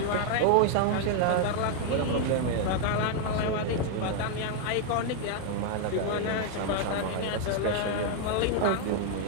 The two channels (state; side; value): different; both; correlation 0.00